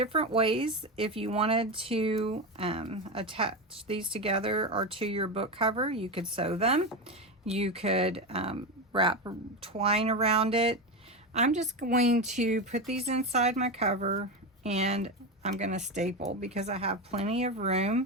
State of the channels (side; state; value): both; normal; correlation 0.16